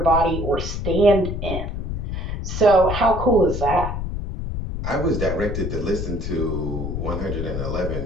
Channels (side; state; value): left; noise; rumble, 4 dB below the sound